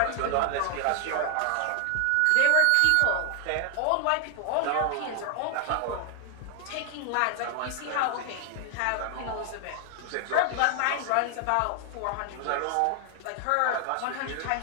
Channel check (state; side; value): different; both; correlation 0.00